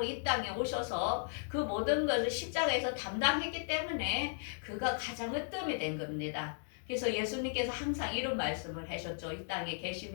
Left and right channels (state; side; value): silent; right; 54 dB below the other